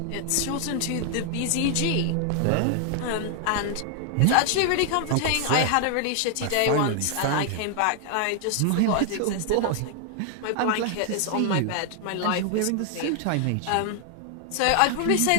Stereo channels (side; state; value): both; different; correlation 0.00